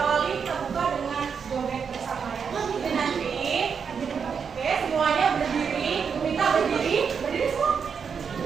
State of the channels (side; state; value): left; quieter; 6.4 dB